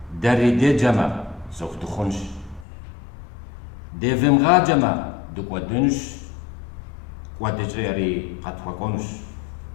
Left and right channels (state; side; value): drops out; right; at 2.7 s